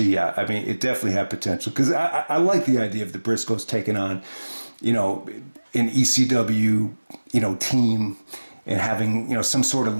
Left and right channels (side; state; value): both; inverted; correlation -1.00